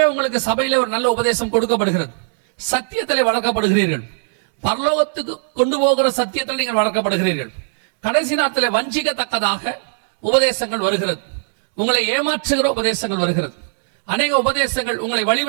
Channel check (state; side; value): silent; left; digital silence